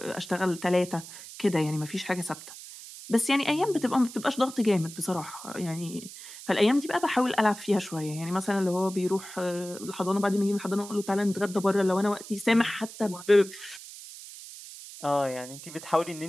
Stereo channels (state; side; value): noise; right; hiss, 14 dB below the sound